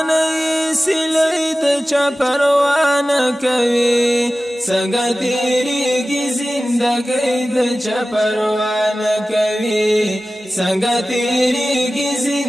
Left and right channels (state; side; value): normal; both; correlation 0.96